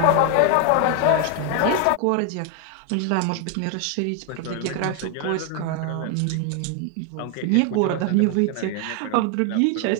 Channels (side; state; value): both; different; correlation 0.01